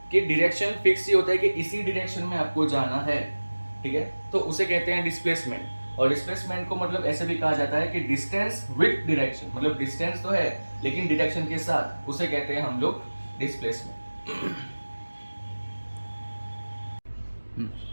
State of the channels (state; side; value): inverted; both; correlation -1.00